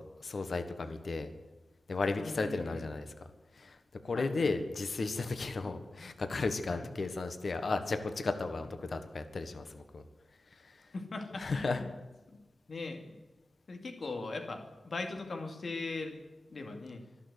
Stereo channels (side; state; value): right; quieter; 3.1 dB